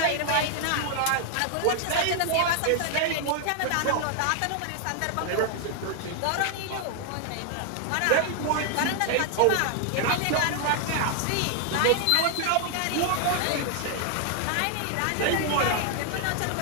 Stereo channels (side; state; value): both; different; correlation 0.00